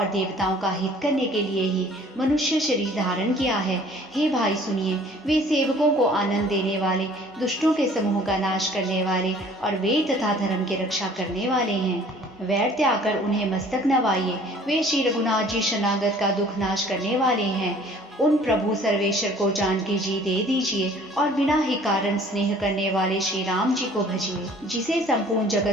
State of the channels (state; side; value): normal; both; correlation 0.52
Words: देवताओं का हित करने के लिए ही मनुष्य शरीर धारण किया है। हे भाई सुनिए, वे सेवकों को आनंद देने वाले, दुष्टों के समूह का नाश करने वाले और वेद तथा धर्म की रक्षा करने वाले हैं। वैर त्याग कर उन्हें मस्तक नवाइए। वे श्री रघुनाथ जी शरणागत का दुख नाश करने वाले हैं। उन प्रभु सर्वेश्वर को जानकी जी दे दीजिए और बिना ही कारण स्नेह करने वाले श्री राम जी को भजिए, जिसे संपूर्ण